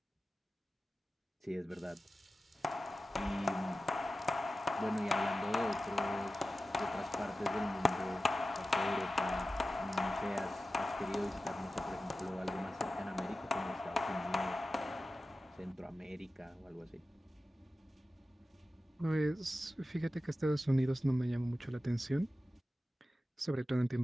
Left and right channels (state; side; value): normal; both; correlation 0.94